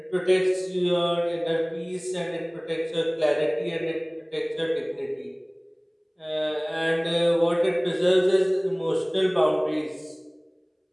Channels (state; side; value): identical; both; correlation 1.00